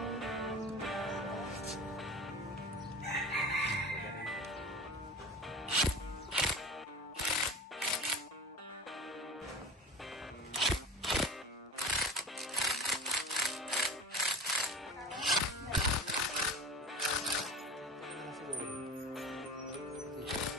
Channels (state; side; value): normal; both; correlation 0.34